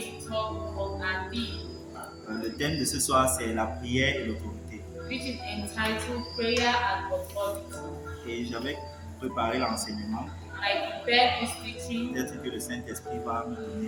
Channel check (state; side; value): identical; both; correlation 1.00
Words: to talk about our theme, Le thème de ce soir, c'est la prière et l'autorité. which is entitled Prayer and Authority. Et j'avais préparé l'enseignement. I prepared this teaching. Peut-être que le Saint-Esprit va me